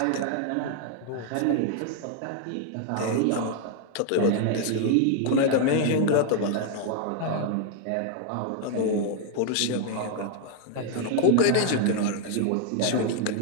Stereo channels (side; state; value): both; different; correlation 0.00